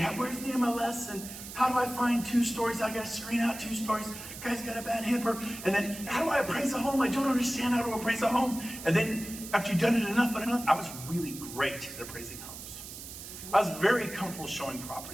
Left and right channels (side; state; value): right; noise; hiss, 12 dB below the sound